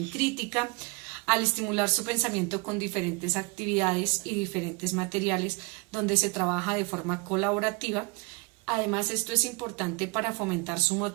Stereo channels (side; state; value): left; quieter; 28.3 dB